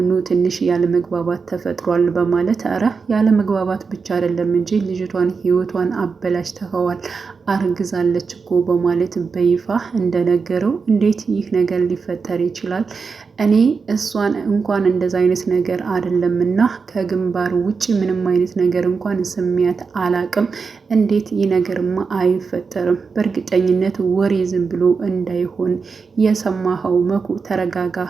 ትንሽ ያለመግባባት ተፈጥሯል በማለት አረ ያለመግባባት ብቻ አይደለም እንጂ ልጅቷን ህይወቷን አበላሽተኸዋል፣ አርግዛለች እኮ በማለት በይፋ እንደነገረው፣ እንዴት ይህ ነገር ሊፈጠር ይችላል? እኔ እሷን እንኳን እንደዛ አይነት ነገር አይደለምና ከግንባር ውጭ ምንም አይነት ነገር እንኳን ስሚያት አላቅም። እንዴት ይህ ነገርማ አይፈጠርም? በእርግጠኝነት ወሬ ዝም ብሎ እንዳይሆን የሰማኸው መኩ፣ ተረጋጋ።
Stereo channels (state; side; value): quieter; left; 5.1 dB